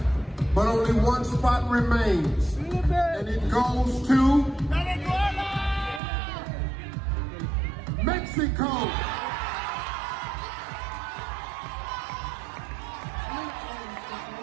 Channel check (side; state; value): left; drops out; at 6.0 s